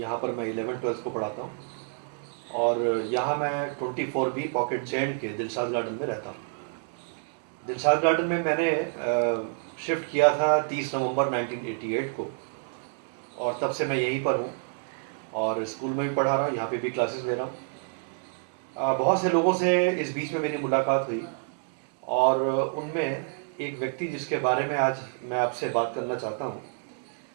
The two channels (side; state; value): left; silent; digital silence